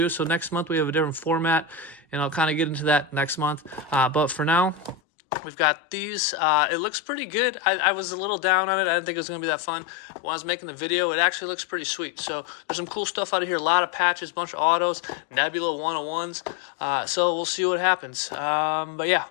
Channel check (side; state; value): right; drops out; at 5.0 s